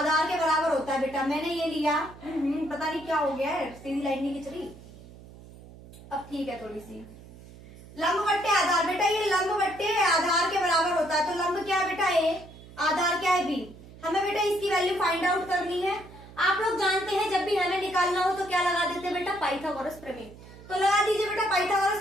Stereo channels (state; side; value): noise; right; hum, 19 dB below the sound